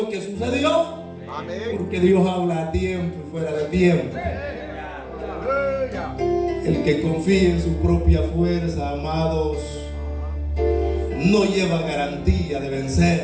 que sucedió. Amén. Porque Dios habla a tiempo y fuera de tiempo. El que confía en su propia fuerza, amados, no lleva garantía de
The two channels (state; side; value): identical; both; correlation 1.00